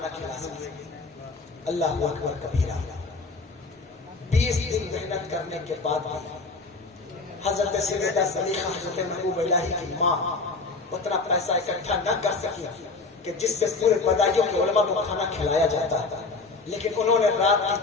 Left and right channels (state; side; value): quieter; right; 3.9 dB